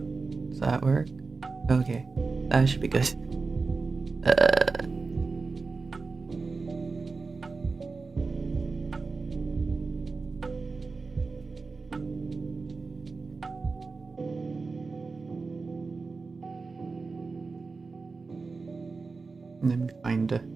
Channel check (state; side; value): quieter; left; 4.2 dB